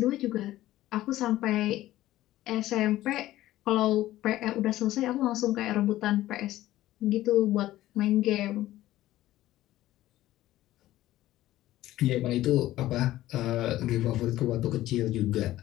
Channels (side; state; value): right; quieter; 15.1 dB